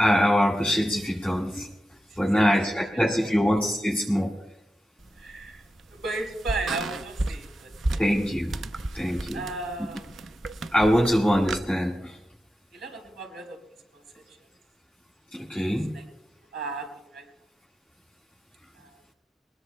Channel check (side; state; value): both; normal; correlation 0.91